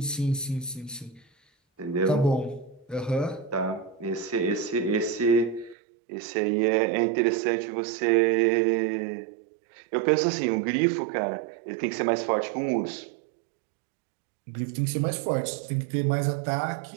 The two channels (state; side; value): drops out; left; at 5.8 s